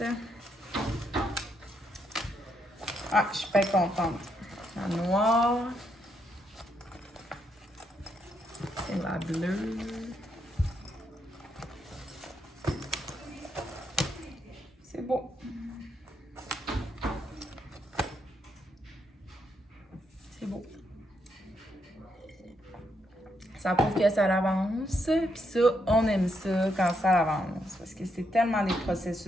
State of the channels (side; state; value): both; normal; correlation 0.78